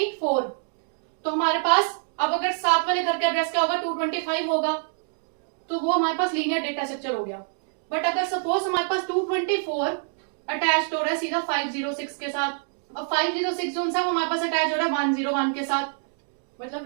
तो हमारे पास अब अगर 7 वाले घर का एड्रेस क्या होगा, 225 होगा, तो वो हमारे पास लीनियर डेटा स्ट्रक्चर हो गया। बट अगर सपोज हमारे पास 224 अटैच हो रहा है सीधा 506 के साथ, अब 506 जो है वो हमारे पास अटैच हो रहा है 101 के साथ,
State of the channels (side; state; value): left; silent; 60 dB below the other